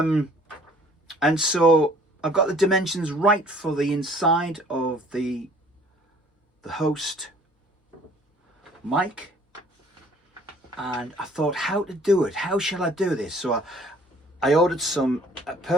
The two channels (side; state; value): both; normal; correlation 0.55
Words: so I've got the dimensions right for the inside of the host mic, and I thought how to do it. How shall I do this? So I ordered some